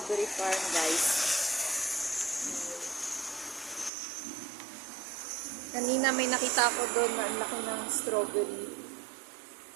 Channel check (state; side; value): drops out; left; at 3.9 s